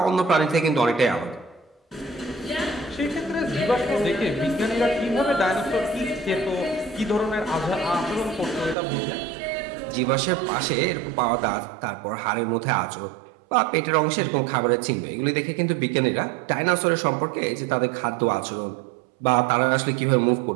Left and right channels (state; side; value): drops out; left; at 8.8 s